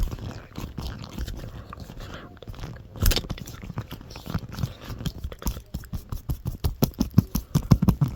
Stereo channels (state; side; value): identical; both; correlation 1.00